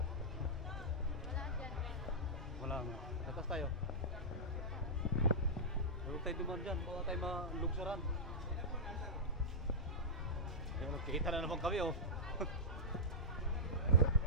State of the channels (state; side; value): normal; both; correlation -0.11